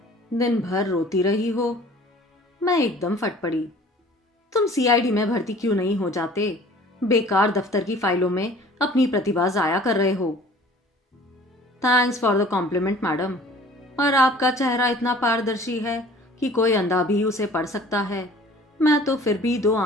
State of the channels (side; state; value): both; normal; correlation 0.49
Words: दिन भर रोती रही हो। मैं एकदम फट पड़ी। तुम सीआईडी में भर्ती क्यों नहीं हो जाते? बेकार दफ्तर की फाइलों में अपनी प्रतिभा जाया कर रहे हो। Thanks for the compliment madam. और आपका चेहरा इतना पारदर्शी है कि कोई अंधा भी उसे पढ़ सकता है। मैं तो फिर भी दो